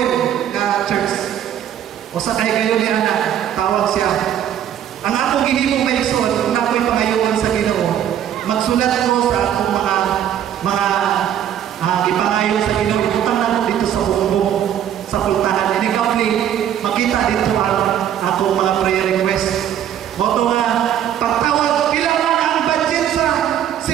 na church. O sa kay kayo ni Ana, tawag siya. Ang akong gihimong Mason, kung ako'y pangayoon sa Ginoo, magsulat ko sa akong mga ipangayon sa Ginoo, ibutang na ko dito sa bumbong sa pultahan. And ikaw makita dito ang akong mga prayer request. Moto nga, pagtawag, ilang ang budget sa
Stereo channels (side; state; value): left; quieter; 10.2 dB